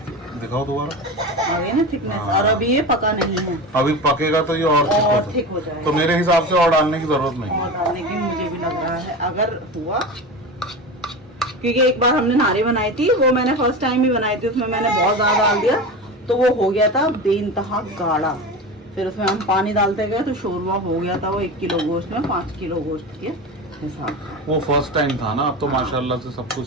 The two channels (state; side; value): normal; both; correlation 0.27